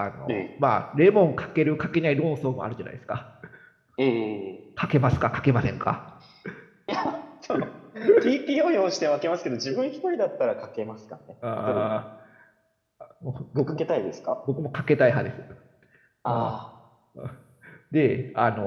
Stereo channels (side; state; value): both; identical; correlation 1.00